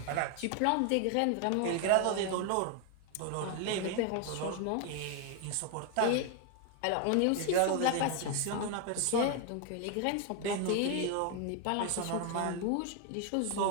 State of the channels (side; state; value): both; different; correlation 0.01